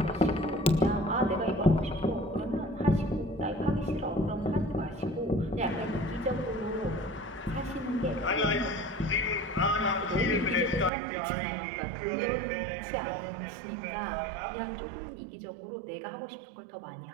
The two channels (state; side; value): drops out; left; at 10.9 s